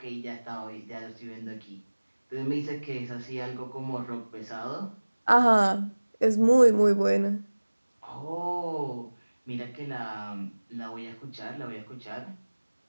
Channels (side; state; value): both; inverted; correlation -1.00